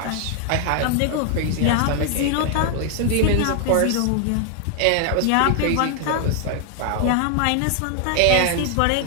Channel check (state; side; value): different; both; correlation 0.00